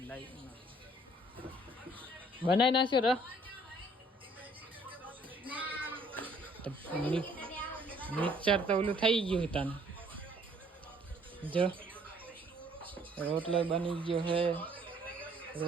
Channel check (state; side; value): normal; both; correlation 0.60